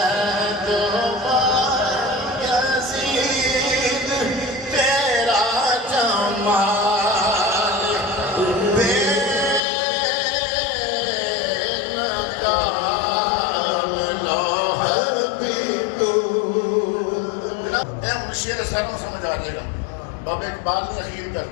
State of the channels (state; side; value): drops out; right; at 9.6 s